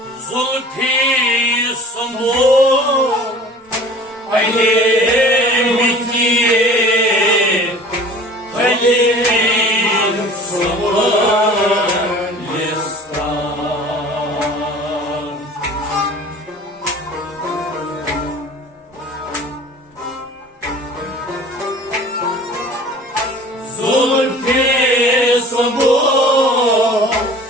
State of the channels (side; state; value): both; normal; correlation 0.45